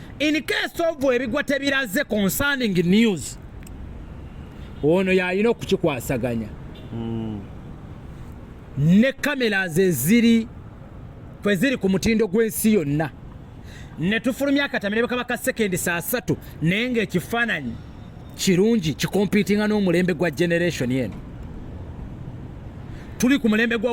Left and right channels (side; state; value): both; identical; correlation 1.00